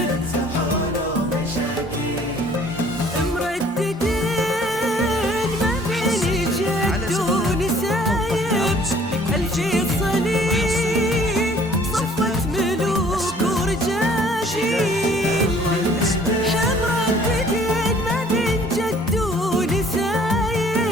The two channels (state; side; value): normal; both; correlation 0.56